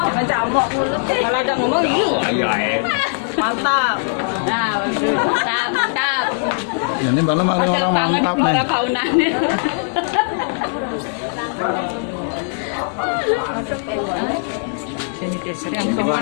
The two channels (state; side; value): silent; right; digital silence